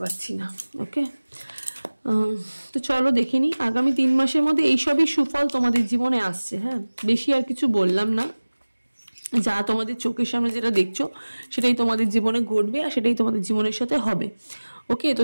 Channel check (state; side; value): inverted; both; correlation -1.00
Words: পাচ্ছি না। ওকে, তো চলো দেখে নিই আগামী 3 মাসের মধ্যে এইসবই সুফল তোমাদের জীবনে আসছে। হ্যাঁ, বেশি আর কিছু বললাম না, যা তোমাদের চোখের সামনে যেটা দেখছো সেটাই তোমাদের জীবনে ঘটবে আর সেটাই তোমাদের জীবনের সাথে হবে। ওকে, তো